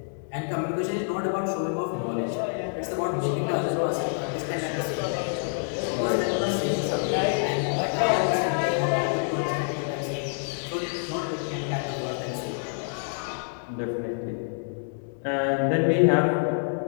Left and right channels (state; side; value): silent; right; digital silence